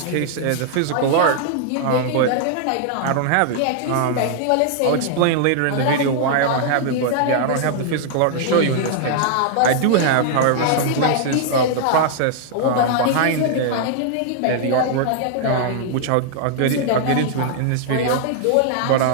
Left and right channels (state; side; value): different; both; correlation -0.01